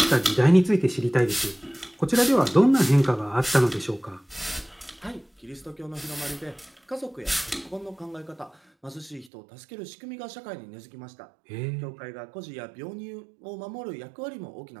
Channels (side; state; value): left; drops out; at 9.3 s